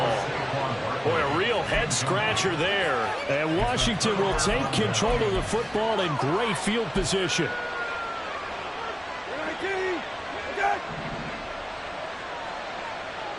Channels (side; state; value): both; identical; correlation 1.00